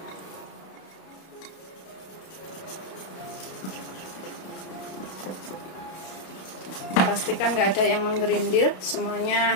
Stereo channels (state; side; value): late; right; 32 ms